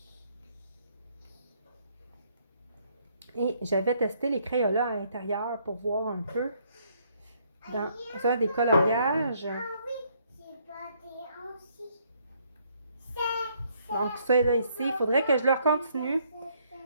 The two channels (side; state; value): both; inverted; correlation -0.68